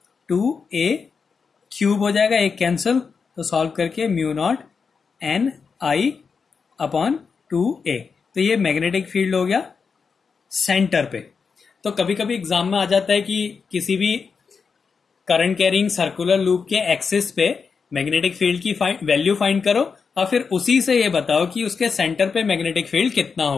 2 A cube हो जाएगा, एक कैंसिल, तो सॉल्व करके mu naught N I upon 2 ए। तो ये मैग्नेटिक फील्ड हो गया सेंटर पे। तो कभी कभी एग्जाम में आ जाता है कि किसी भी करंट कैरिंग सर्कुलर लूप के एक्सिस पे मैग्नेटिक फील्ड की वैल्यू फाइंड करो और फिर उसी से ये बताओ कि उसके सेंटर पे मैग्नेटिक फील्ड कितना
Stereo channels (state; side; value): quieter; right; 5.5 dB